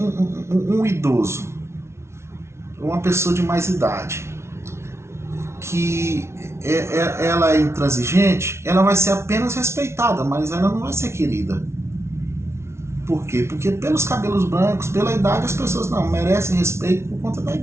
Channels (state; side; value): late; left; 0.13 ms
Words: idoso, uma pessoa de mais idade, que ela é intransigente, ela vai ser apenas respeitada, mas ela não vai ser querida. Por quê? Porque pelos cabelos brancos, pela idade, as pessoas não merecem respeito por conta da